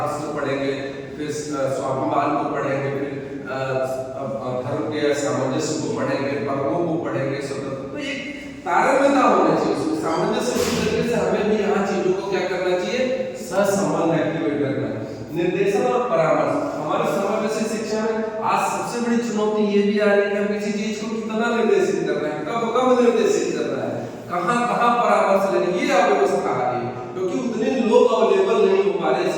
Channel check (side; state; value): both; identical; correlation 1.00